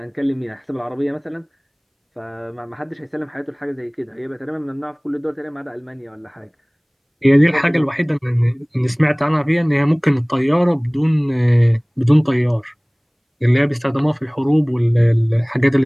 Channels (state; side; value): identical; both; correlation 1.00